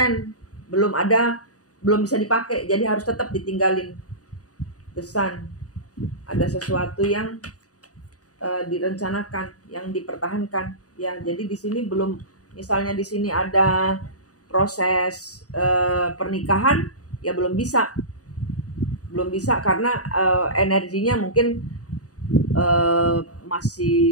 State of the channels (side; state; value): right; late; 0.67 ms